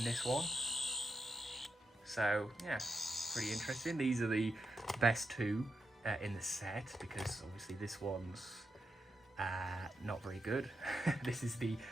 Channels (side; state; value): both; normal; correlation 0.85